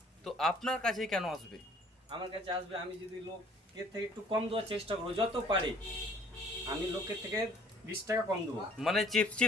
তো আপনার কাছেই কেন আসবে? আমার কাছে আসবে, আমি যদি লোকের থেকে একটু কম দেওয়ার চেষ্টা করবো যত পারি। আমি লোকের থেকে 20 টাকা কম দেবো, মানে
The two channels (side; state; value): both; normal; correlation 0.55